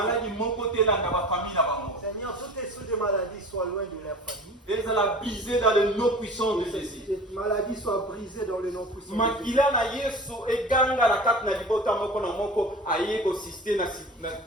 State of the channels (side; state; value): both; normal; correlation 0.38